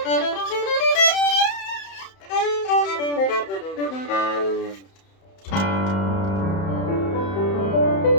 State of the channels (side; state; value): right; late; 31 ms